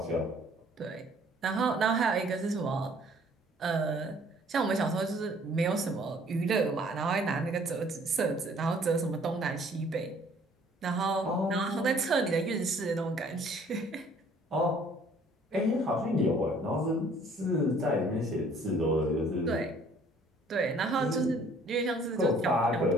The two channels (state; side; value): normal; both; correlation 0.57